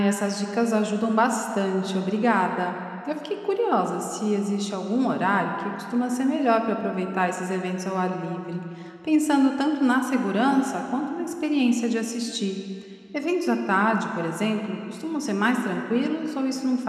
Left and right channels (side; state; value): both; identical; correlation 1.00